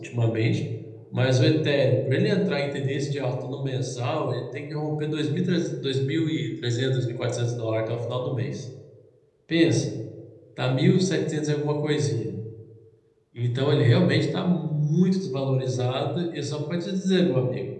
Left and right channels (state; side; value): identical; both; correlation 1.00